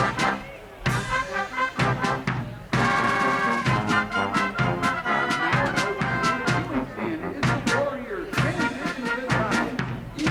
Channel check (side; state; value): both; identical; correlation 1.00